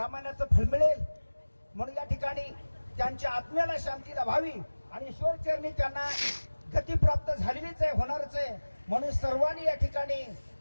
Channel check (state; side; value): inverted; both; correlation -1.00